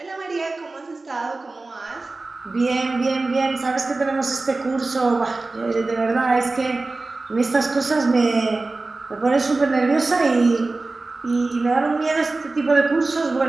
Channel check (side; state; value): left; quieter; 3.4 dB